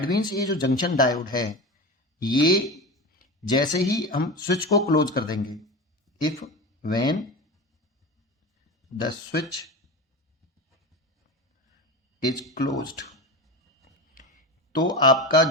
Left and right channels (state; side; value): normal; both; correlation 0.25